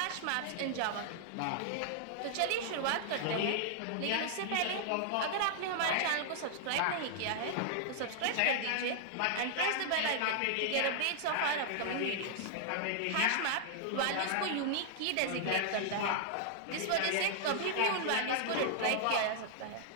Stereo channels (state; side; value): different; both; correlation -0.01